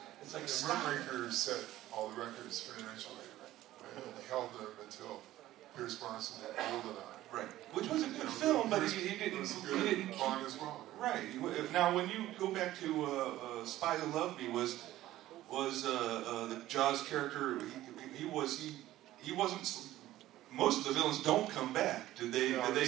it's like Moonraker set all the records financially. He held them until Pierce Brosnan had GoldenEye. Right, which was a good film, but he didn't Bond as well. Right. Now, when you go back to Spy Who Loved Me, was the Jaws character? He wasn't. Most of the villains don't come back. Did they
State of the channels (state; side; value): quieter; left; 14.9 dB